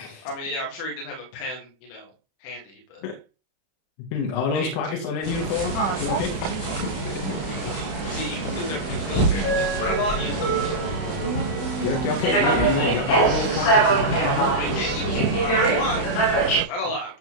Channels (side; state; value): right; late; 31 ms